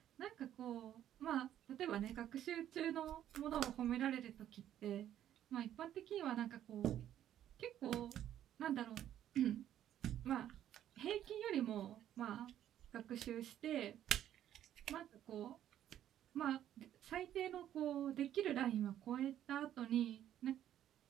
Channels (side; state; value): left; quieter; 11.2 dB